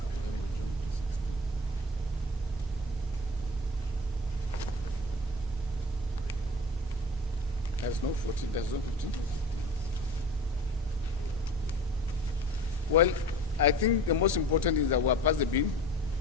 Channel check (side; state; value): both; normal; correlation 0.38